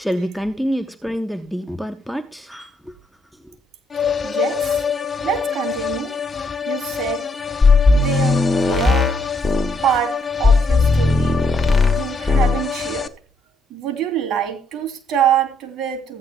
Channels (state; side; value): normal; both; correlation 0.73